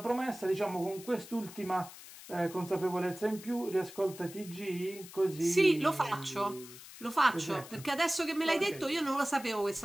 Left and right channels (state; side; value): noise; left; hiss, 16 dB below the sound